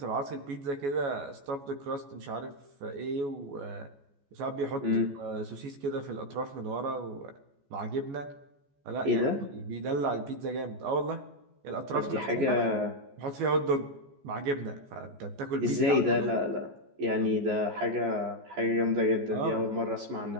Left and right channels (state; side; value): late; left; 14 ms